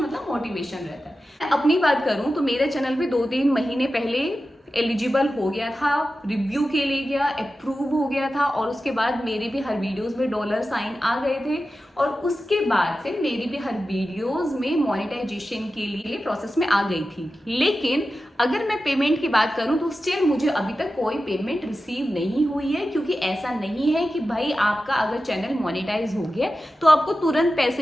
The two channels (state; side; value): normal; both; correlation 0.93